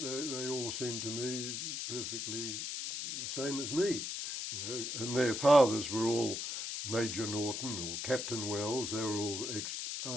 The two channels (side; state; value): left; noise; hiss, 4 dB below the sound